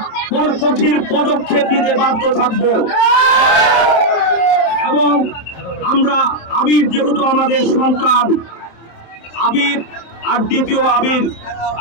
কঠিন পদক্ষেপ নিতে বাধ্য থাকব। এবং আমরা আবির যেহেতু আমাদের সন্তান, আবির আর দ্বিতীয়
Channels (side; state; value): right; late; 26 ms